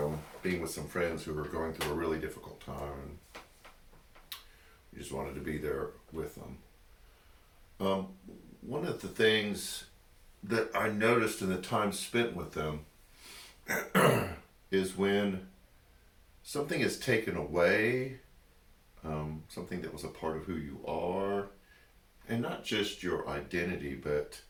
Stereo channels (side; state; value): both; identical; correlation 1.00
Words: being with some friends who were going through a really difficult time. We just wanted to be there with them. Um, One of the things that I noticed in the time spent with them is when something is taken away, something that was a part of who you are, and not just your identity, but